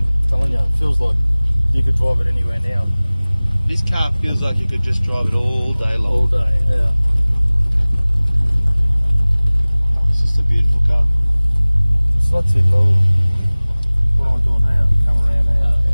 I'm telling you, it feels like you could drive it anywhere now. This car feels like you could just drive it all day long. All day. Yeah. It's just a beautiful car. It's not too low. What am I doing now? Come around now.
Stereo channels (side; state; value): both; inverted; correlation -1.00